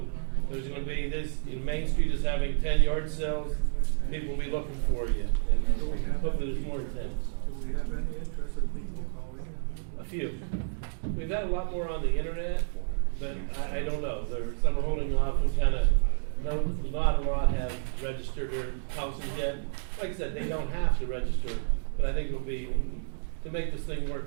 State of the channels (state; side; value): silent; left; digital silence